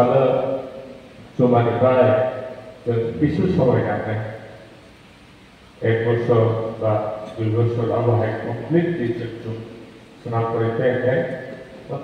cuma dipakai जब bisu sampai nanti एक वर्ष বা 2 বছর আবহাওয়া কমপ্লিটলি চলছে স্নান করতে हैं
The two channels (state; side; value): identical; both; correlation 1.00